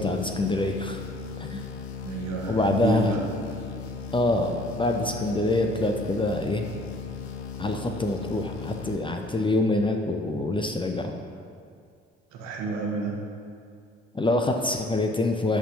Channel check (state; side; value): normal; both; correlation 0.57